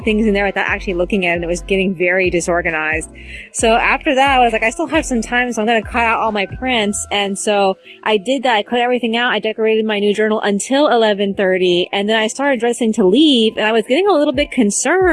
in there without actually looking at it, and it was getting very disorganized. So after that, I was like, I still have some time, so I'm going to cut out all my prints. And so I did that. I cut everything out. I decorated my new journal until 11:30, and then I started dressing to leave, and I was getting a little bit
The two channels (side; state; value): both; identical; correlation 1.00